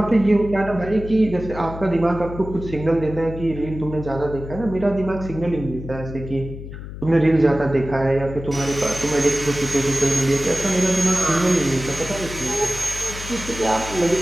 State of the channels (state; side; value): noise; left; hum, 11 dB below the sound